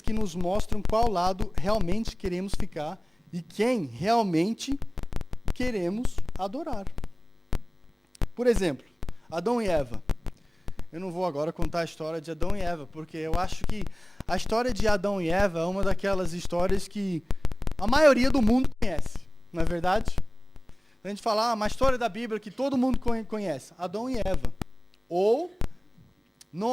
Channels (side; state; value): both; normal; correlation 0.96